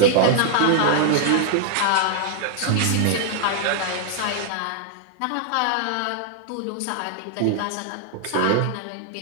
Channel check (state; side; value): different; both; correlation 0.00